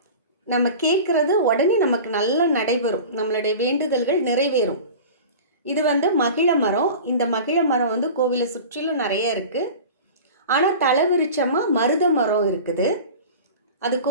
நம்ம கேட்குறது உடனே நமக்கு நல்லா நடைபெறும், நம்மளுடைய வேண்டுதல்கள் நிறைவேறும். இது வந்து மகிழ மரம். இந்த மகிழ மரம் வந்து கோவிலை சுற்றிலும் நிறைய இருக்குது. ஆனால் தலைவிருச்சமாக மருத மரம் இருக்குது. அது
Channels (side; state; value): both; inverted; correlation -0.36